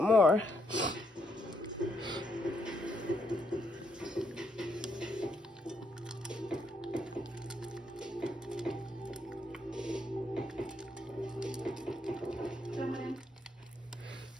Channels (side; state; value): both; normal; correlation 0.76